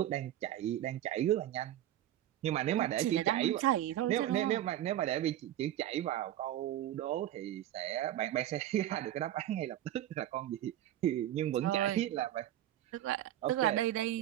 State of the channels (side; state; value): left; quieter; 12.6 dB